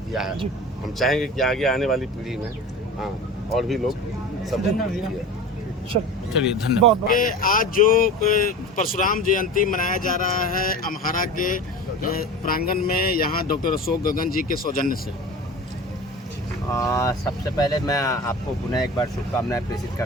किया है। हम चाहेंगे कि आगे आने वाली पीढ़ी में और भी लोग सब चलिए धन्यवाद। आज जो परशुराम जयंती मनाया जा रहा है अम्हारा के प्रांगण में, यहाँ डॉक्टर अशोक गगन जी के सौजन्य से, सबसे पहले मैं आपको पुनः एक बार शुभकामनाएं प्रेषित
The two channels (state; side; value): normal; both; correlation 0.34